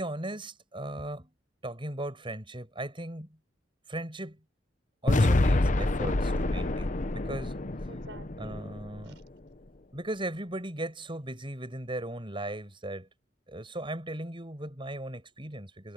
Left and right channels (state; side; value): normal; both; correlation 0.76